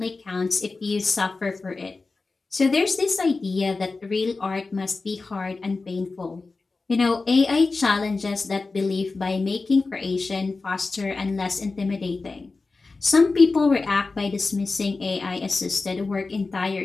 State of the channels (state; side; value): quieter; right; 3.8 dB